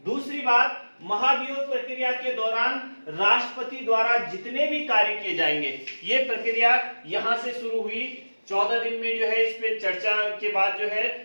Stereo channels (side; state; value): both; inverted; correlation -1.00